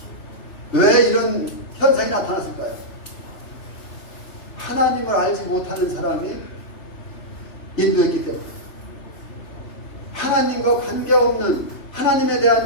왜 이런 현상이 나타났을까요? 하나님을 알지 못하는 사람이 인도했기 때문에, 하나님과 관계없는, 하나님에 대한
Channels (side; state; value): right; late; 3.3 ms